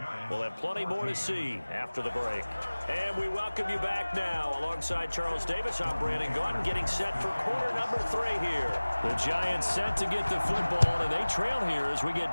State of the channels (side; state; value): both; inverted; correlation -1.00